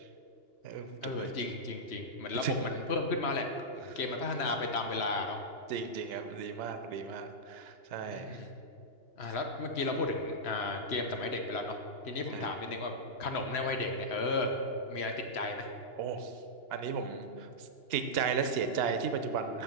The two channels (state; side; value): late; right; 2.9 ms